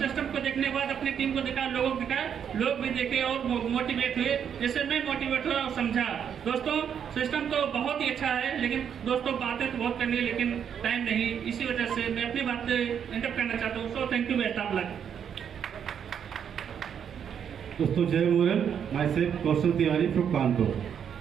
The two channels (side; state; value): left; quieter; 8.1 dB